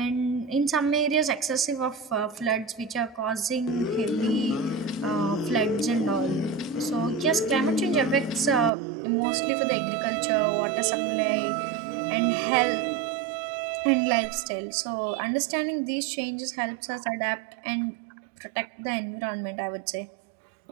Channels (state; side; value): drops out; left; at 8.7 s